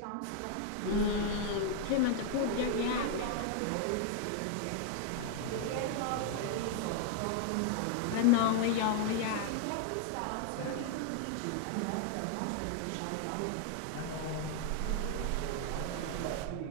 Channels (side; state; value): both; different; correlation 0.00